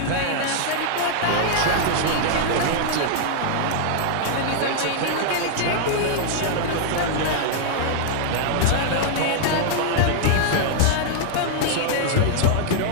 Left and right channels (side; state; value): both; different; correlation -0.01